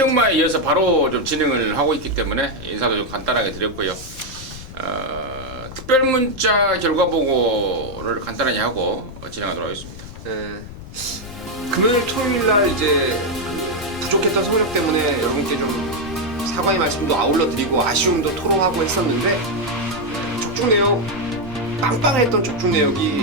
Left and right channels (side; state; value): left; noise; rumble, 14 dB below the sound